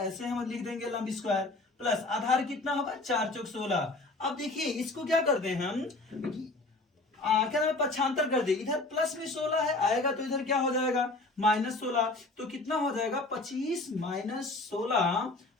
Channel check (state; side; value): quieter; right; 3.1 dB